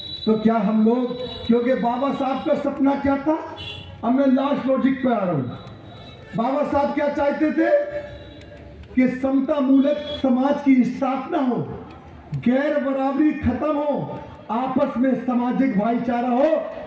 तो क्या हम लोग, क्योंकि बाबा साहब का सपना क्या था, अब मैं लास्ट लॉजिक पे आ रहा हूं। बाबा साहब क्या चाहते थे कि समता मूलक समाज की स्थापना हो, गैर बराबरी खत्म हो, आपस में सामाजिक भाईचारा हो,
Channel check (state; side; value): identical; both; correlation 1.00